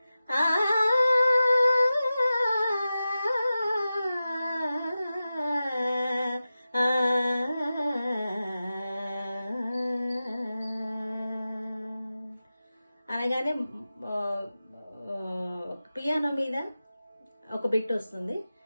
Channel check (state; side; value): inverted; both; correlation -0.94